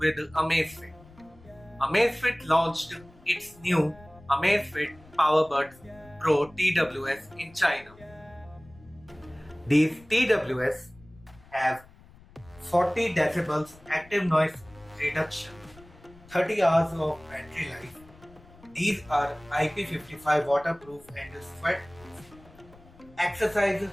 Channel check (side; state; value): left; noise; rumble, 24 dB below the sound